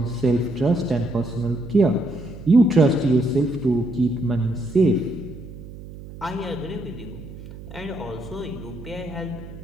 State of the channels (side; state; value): right; noise; hum, 14 dB below the sound